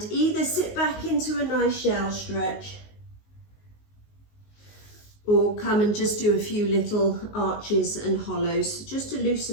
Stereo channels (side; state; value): right; late; 19 ms